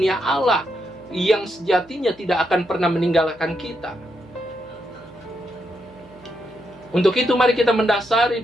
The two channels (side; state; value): right; noise; hum, 28 dB below the sound